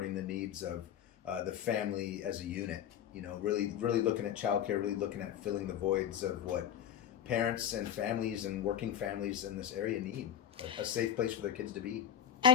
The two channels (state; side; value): quieter; right; 9.7 dB